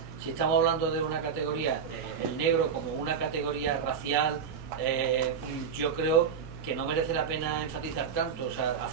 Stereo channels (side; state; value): left; quieter; 6.7 dB